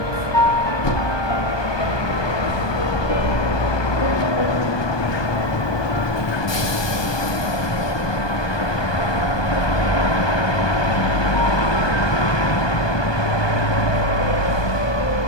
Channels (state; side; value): late; right; 1.2 ms